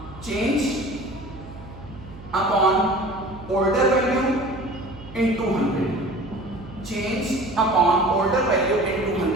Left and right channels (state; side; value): noise; right; hum, 16 dB below the sound